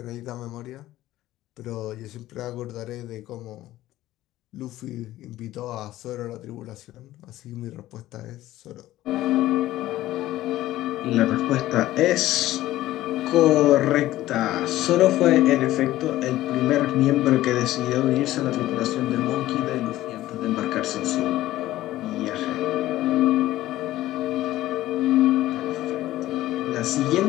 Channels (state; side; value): quieter; right; 15.3 dB